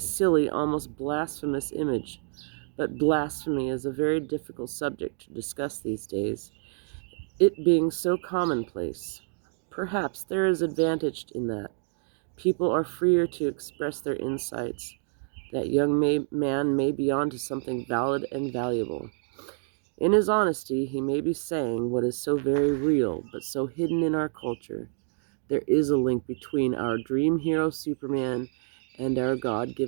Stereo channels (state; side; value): silent; left; 59 dB below the other